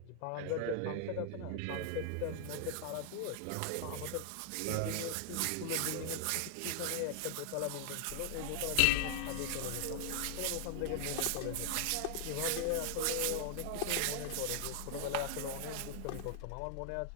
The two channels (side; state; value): both; different; correlation 0.00